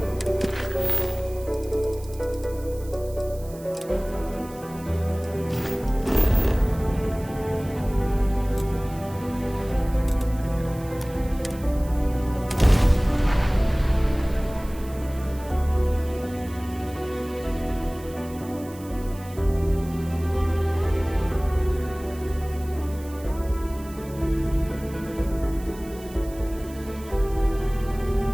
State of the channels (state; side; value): noise; right; hiss, 20 dB below the sound